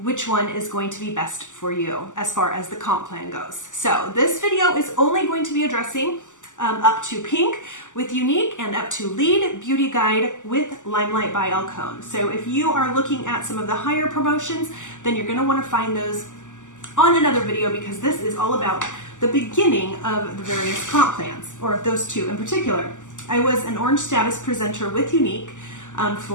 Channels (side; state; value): right; late; 0.86 ms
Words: one is going to be best for you as far as the comp plan goes. So this video is only going to be addressing up to pink with Younique and up to lead beauty guide with LimeLight by Alcone. So if you are looking at some of the higher promotions, then you're going to want to find those on another video, because this is all about the beginning of the various comp plans, or those two in particular. I was an orange status presenter with Younique